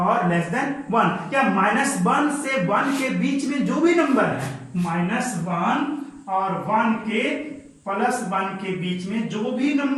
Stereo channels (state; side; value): identical; both; correlation 1.00